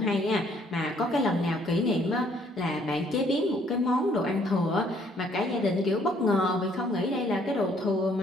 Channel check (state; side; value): normal; both; correlation 0.64